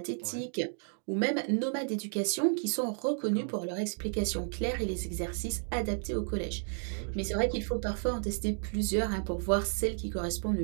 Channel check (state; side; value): silent; left; 56 dB below the other